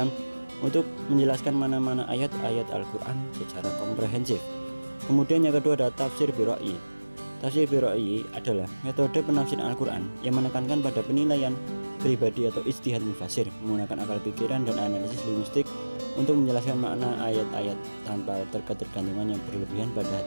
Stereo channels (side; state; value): both; inverted; correlation -1.00